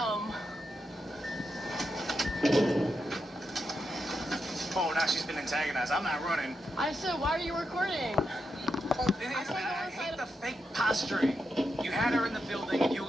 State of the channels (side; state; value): both; normal; correlation 0.85